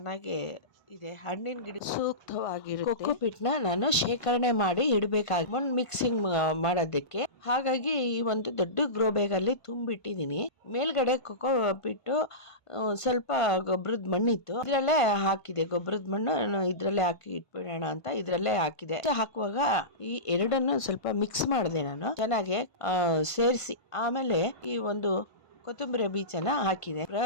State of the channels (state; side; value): late; right; 1.5 ms